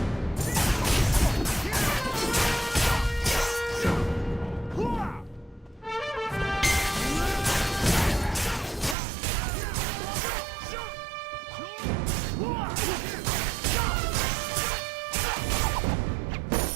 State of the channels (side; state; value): left; drops out; at 9.0 s